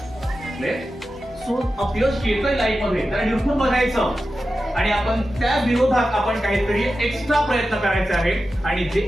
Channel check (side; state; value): both; normal; correlation 0.92